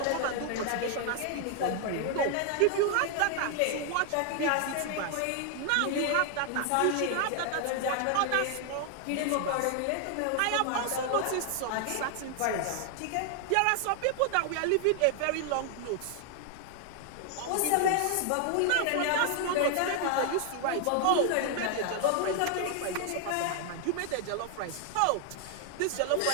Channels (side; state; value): both; different; correlation 0.00